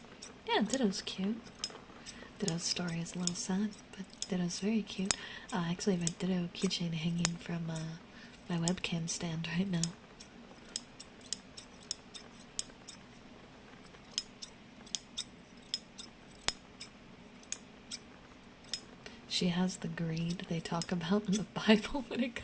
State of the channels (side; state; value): both; identical; correlation 1.00